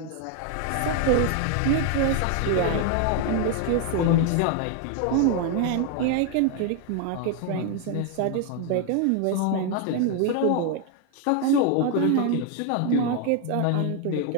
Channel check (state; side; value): different; both; correlation 0.01